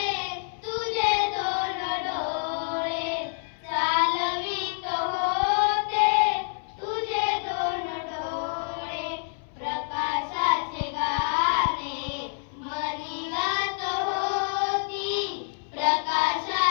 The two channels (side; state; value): right; silent; 60 dB below the other